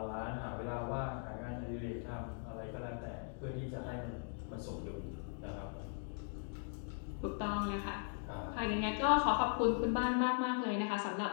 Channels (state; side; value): silent; right; 51 dB below the other